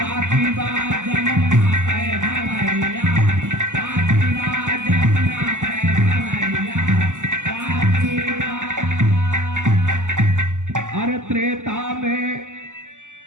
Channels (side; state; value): left; late; 0.86 ms